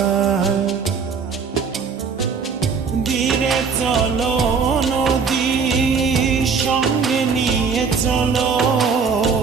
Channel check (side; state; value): left; quieter; 5.5 dB